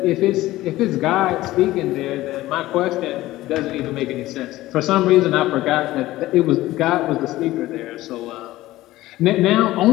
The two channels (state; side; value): quieter; right; 16.6 dB